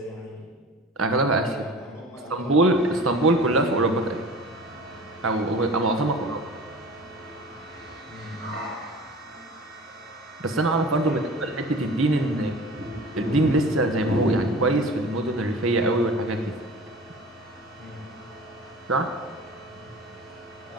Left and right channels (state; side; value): normal; both; correlation 0.39